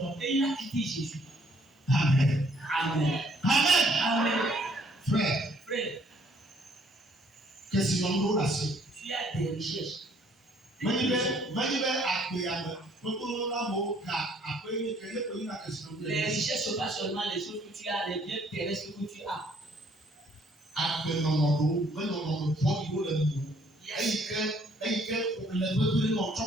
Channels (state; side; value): normal; both; correlation 0.63